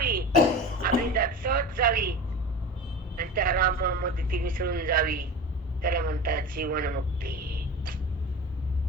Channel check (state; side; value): normal; both; correlation 0.32